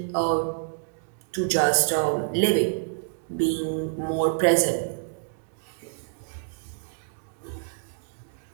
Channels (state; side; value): silent; left; digital silence